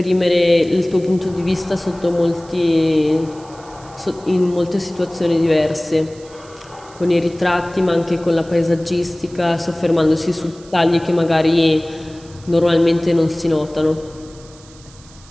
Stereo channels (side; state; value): right; noise; hiss, 24 dB below the sound